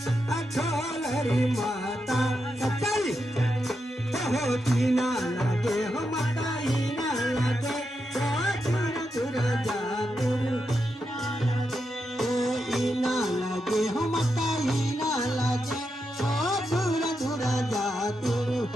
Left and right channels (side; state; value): both; normal; correlation 0.85